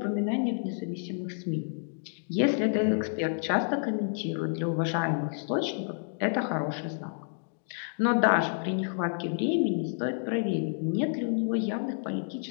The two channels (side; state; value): right; silent; digital silence